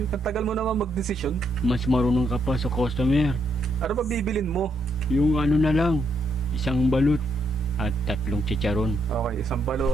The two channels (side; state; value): both; normal; correlation 0.76